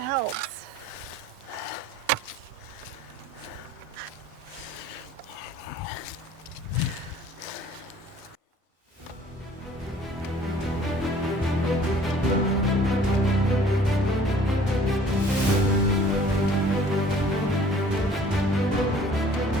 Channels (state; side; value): normal; both; correlation 0.53